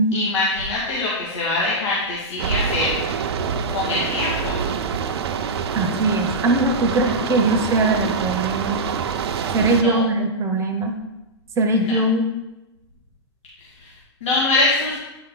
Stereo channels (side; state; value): both; normal; correlation -0.08